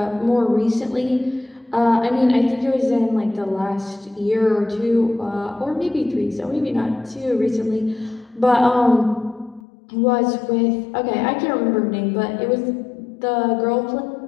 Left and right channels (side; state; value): right; drops out; at 9.6 s